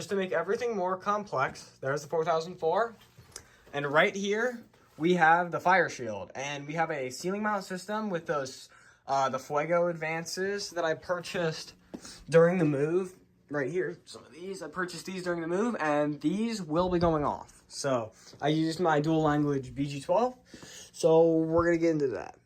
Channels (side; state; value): both; identical; correlation 1.00